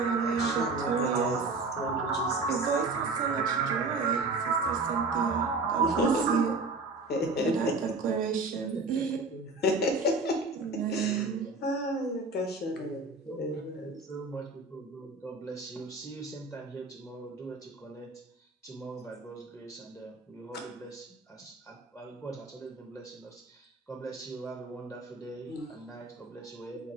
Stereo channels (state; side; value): quieter; left; 3.4 dB